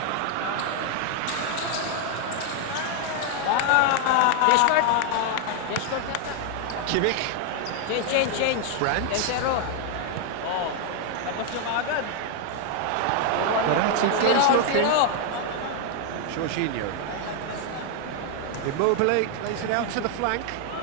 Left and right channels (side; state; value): both; different; correlation 0.00